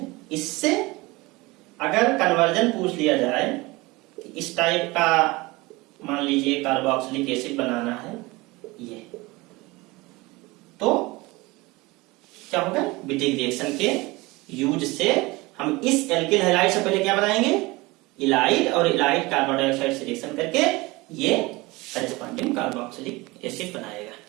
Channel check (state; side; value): quieter; left; 22.5 dB